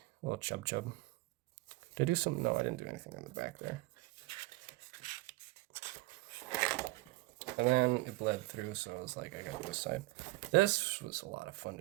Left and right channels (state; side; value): quieter; left; 21.2 dB